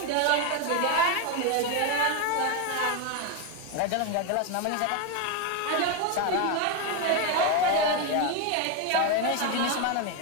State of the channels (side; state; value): both; different; correlation 0.02